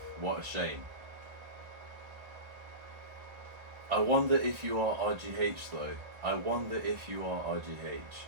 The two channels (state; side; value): late; left; 1.5 ms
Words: What a shame. I wonder if you are RGH though. I wonder if you are RGH.